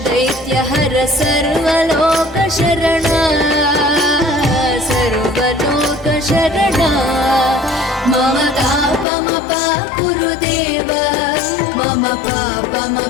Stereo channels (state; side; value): drops out; right; at 9.1 s